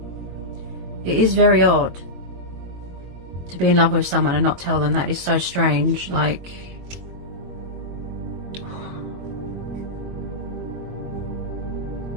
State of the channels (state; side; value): late; left; 22 ms